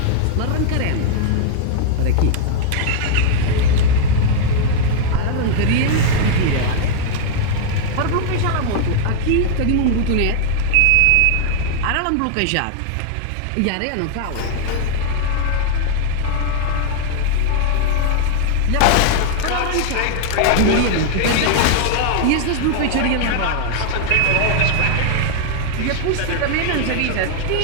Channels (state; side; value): different; both; correlation 0.00